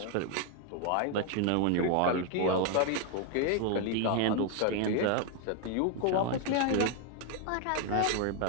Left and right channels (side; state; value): both; different; correlation 0.01